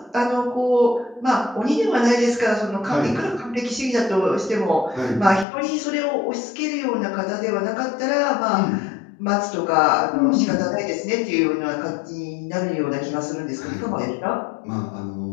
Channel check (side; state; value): right; drops out; at 5.5 s